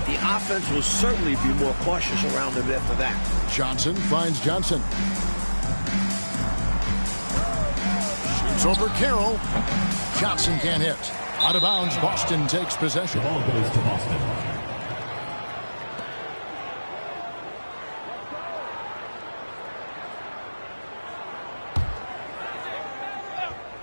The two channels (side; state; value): both; inverted; correlation -1.00